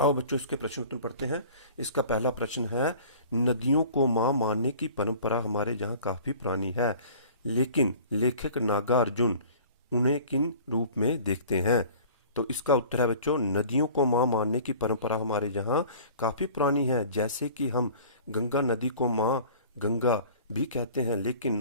बच्चों, इसके प्रश्न उत्तर पढ़ते हैं। इसका पहला प्रश्न है, नदियों को मां मानने की परंपरा हमारे यहाँ काफी पुरानी है, लेकिन लेखक नागार्जुन उन्हें किन रूप में देखते हैं? तो इसका उत्तर है बच्चों, नदियों को मां मानने की परंपरा हमारे यहाँ काफी पुरानी है। जैसे कि हम गंगा नदी को मां गंगा भी कहते हैं, लेकिन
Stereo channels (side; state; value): both; inverted; correlation -0.45